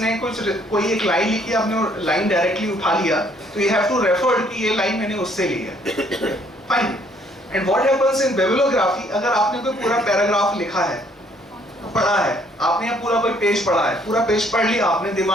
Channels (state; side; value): normal; both; correlation 0.64